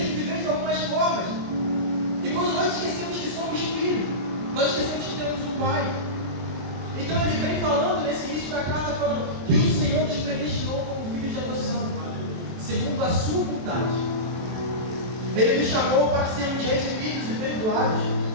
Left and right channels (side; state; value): left; late; 23 ms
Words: que viver de algumas formas. E quando nós esquecemos que somos filhos, nós esquecemos que temos um pai. Então ele vem falando nesse início da carta, falando que o Senhor nos predestinou como filhos de adoção, segundo a sua vontade. Ele nos chamou para sermos redimidos e perdoados,